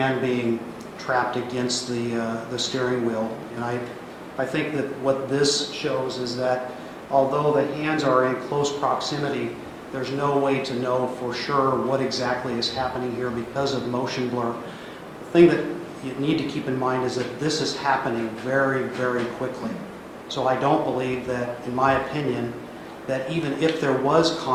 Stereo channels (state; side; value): identical; both; correlation 1.00